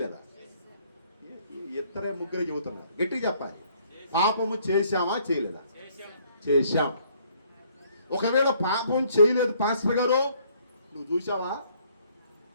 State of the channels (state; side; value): inverted; both; correlation -0.64